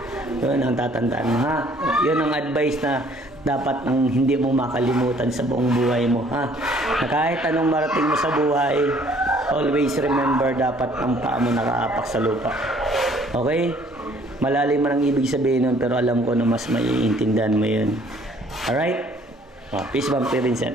Yun ang tatandaan mo, ha? Yun ang advice na dapat ang hindi mo makalimutan sa buong buhay mo, ha? Na kahit anong marating mo sa buhay, always remember dapat ang paa mo nakaapak sa lupa. Okay? Malalim man ang ibig sabihin nun, pero alam ko na mas maiintindihan mo yun. Alright? Peace bomb,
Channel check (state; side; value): normal; both; correlation 0.59